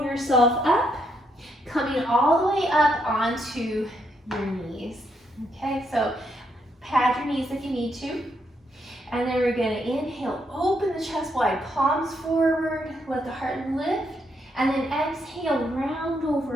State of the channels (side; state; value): both; normal; correlation 0.77